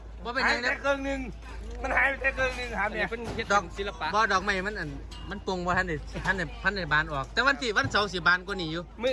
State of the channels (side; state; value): both; identical; correlation 1.00